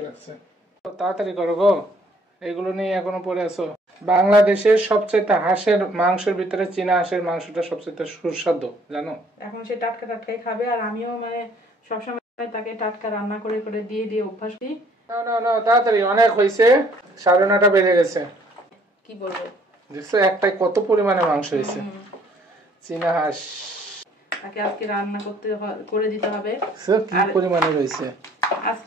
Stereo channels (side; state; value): both; normal; correlation 0.61